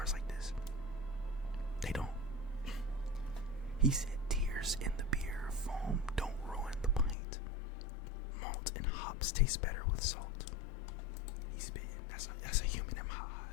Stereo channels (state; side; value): drops out; right; at 7.2 s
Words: like this. They don't. He said, "Tears in the beer, foam don't ruin the pint. Malt and hops taste better with salt." He's spitting. That's a human in my